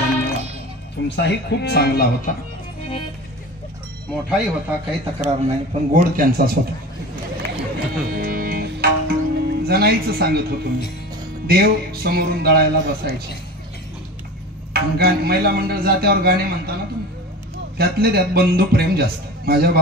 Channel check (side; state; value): both; normal; correlation 0.33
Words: तुमचाही खूप चांगला होता, मोठाही होता, काही तक्रार नाही, पण गोड त्यांचाच होता. जनाईचं सांगत होतो मी, देव समोरून दळायला बसायचे, महिला मंडळ जात्यावर गाणे म्हणताना तुम्ही, त्यातले त्यात बंधू प्रेम जास्त. माझ्या